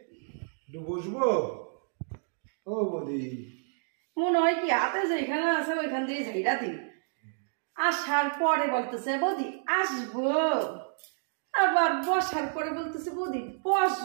একটু বসবো। ও বৌদি মনে হয় কি হাতে যেখানে আছে ওইখান দিয়ে ঝাইরা দিই। আসার পরে বলতেছে বৌদি আসবো, আবার বসার পরে বলতেছে বৌদি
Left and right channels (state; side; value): silent; left; digital silence